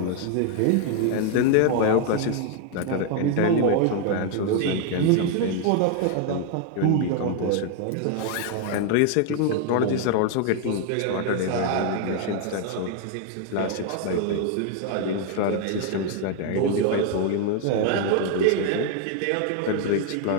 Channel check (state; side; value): different; both; correlation 0.00